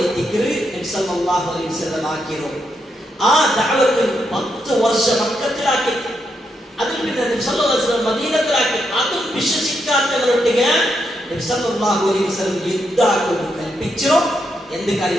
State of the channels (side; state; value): both; normal; correlation 0.81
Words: ദിക്ർ നബി സല്ലല്ലാഹു അലൈഹി വസല്ലം ആക്കിയോ. ആ ദഅവത്ത് 10 വർഷം മക്കത്തിലാക്കി അതിൽ പിന്നെ നബി സല്ലല്ലാഹു അലൈഹി വസല്ലം മദീനത്തിലാക്കി. അതും വിശ്വസിക്കാത്തവരൊട്ടിಗೆ നബി സല്ലല്ലാഹു അലൈഹി വസല്ലം യുദ്ധാക്കും കൽപ്പിച്ചു. എന്ത്